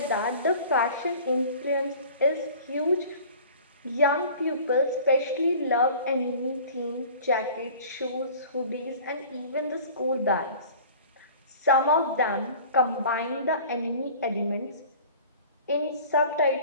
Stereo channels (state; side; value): inverted; both; correlation -0.44